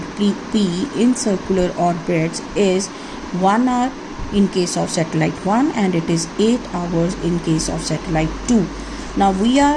P in circular orbits, is 1 hour in case of satellite 1 and it is 8 hours in case of satellite 2. Now we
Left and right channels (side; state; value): both; identical; correlation 1.00